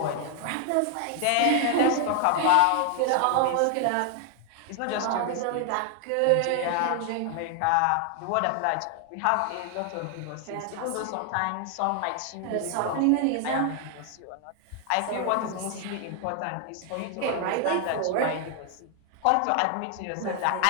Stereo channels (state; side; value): different; both; correlation 0.00